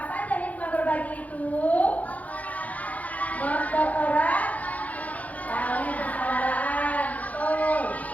saja hikmah berbagi itu? Mempererat tali persaudaraan, betul.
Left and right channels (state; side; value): late; right; 0.073 ms